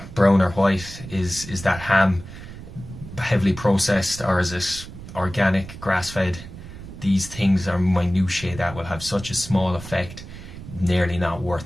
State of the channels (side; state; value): right; noise; rumble, 13 dB below the sound